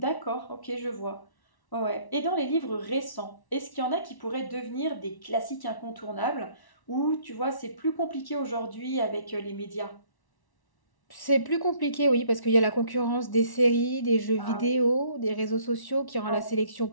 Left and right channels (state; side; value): late; right; 1.1 ms